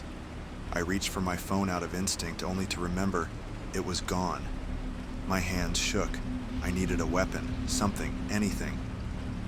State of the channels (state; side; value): identical; both; correlation 1.00